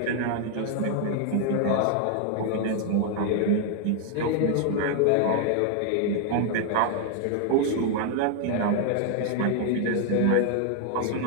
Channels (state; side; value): different; both; correlation 0.00